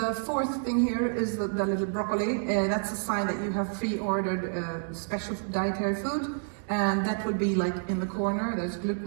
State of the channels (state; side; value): silent; left; digital silence